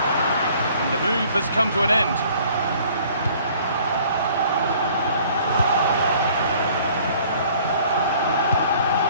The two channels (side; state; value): both; inverted; correlation -0.55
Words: And the move has come to an end.